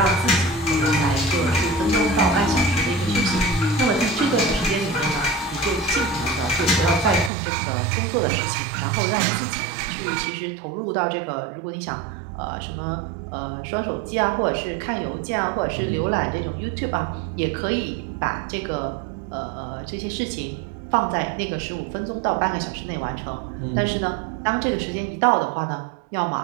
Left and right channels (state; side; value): drops out; left; at 7.3 s